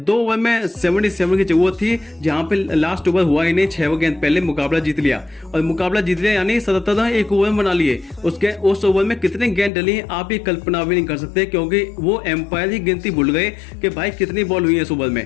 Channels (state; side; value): drops out; right; at 9.7 s